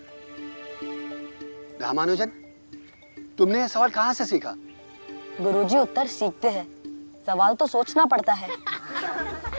रामानुजन, तुमने यह सवाल कहाँ से सीखा? गुरुजी, उत्तर सीखते हैं, सवाल तो सोचना पड़ता है।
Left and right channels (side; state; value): both; inverted; correlation -1.00